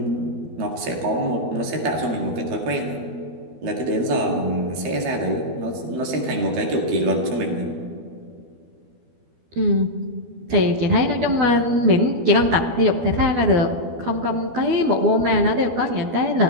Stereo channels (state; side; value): late; left; 12 ms